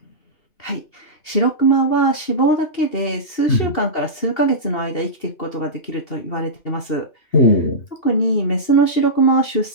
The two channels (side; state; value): right; late; 2.8 ms